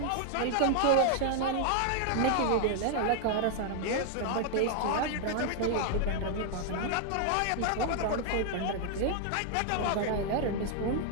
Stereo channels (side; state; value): both; different; correlation 0.00